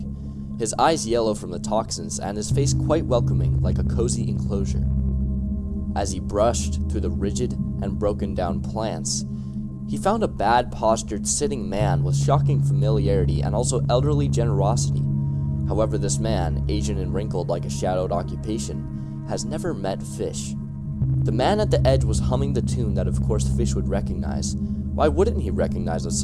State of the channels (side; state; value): both; identical; correlation 1.00